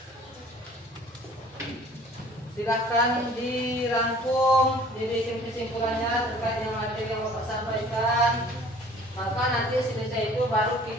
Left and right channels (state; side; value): normal; both; correlation 0.51